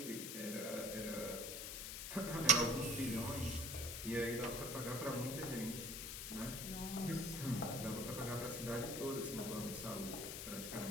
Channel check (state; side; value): noise; left; hiss, 5 dB below the sound